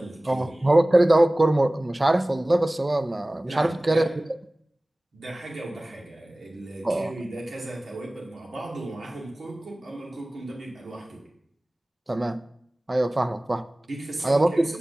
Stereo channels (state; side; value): normal; both; correlation 0.98